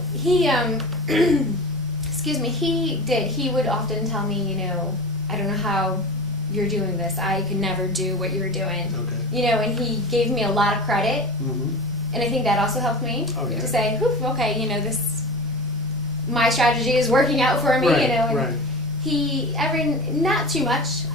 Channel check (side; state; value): both; normal; correlation 0.31